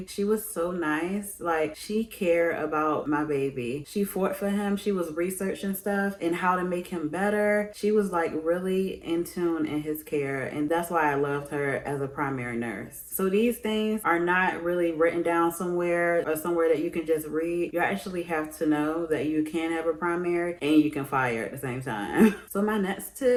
She was so nice. She cared about my baby. She fought for him. She was researching stuff and how to make him better. She was really in tune in his care. And that's why I loved her as a primary nurse. So these things are not really written down somewhere or somewhere that you can just read. You actually have to know that you can have a primary and you can fire at the same time. So my next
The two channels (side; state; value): both; identical; correlation 1.00